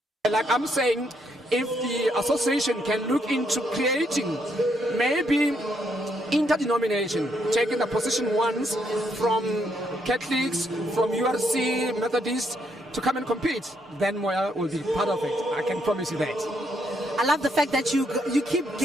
like I'm saying, if the association can look into creating maybe interdenomination, taking the position ones from Catholics, from URC, Methodists, to come and compete, then Moya will be part of it. I can promise you that. I love the fact that you keep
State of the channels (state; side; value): normal; both; correlation 0.75